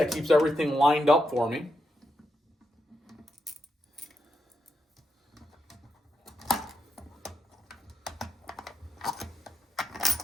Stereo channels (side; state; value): both; normal; correlation 0.83